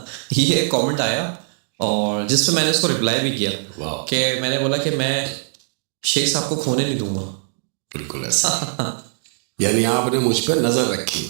ये कमेंट आया और जिस पे मैंने उसको रिप्लाई भी किया वाह, कि मैंने बोला कि मैं शेख साहब को खोने नहीं दूंगा। बिल्कुल ऐसा। यानी आपने मुझ पर नजर रखी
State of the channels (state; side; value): silent; left; digital silence